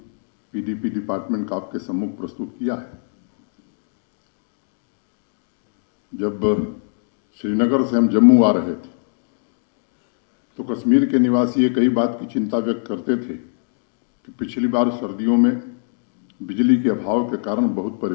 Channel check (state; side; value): silent; right; digital silence